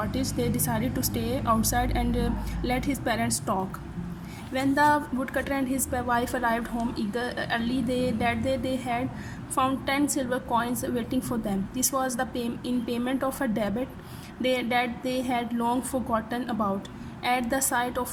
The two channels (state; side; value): identical; both; correlation 1.00